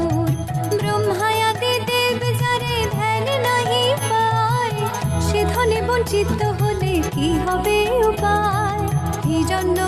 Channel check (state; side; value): identical; both; correlation 1.00